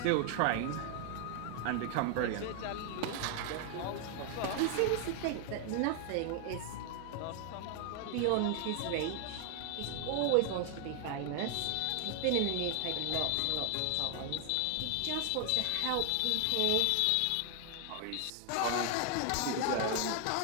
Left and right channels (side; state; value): both; different; correlation 0.00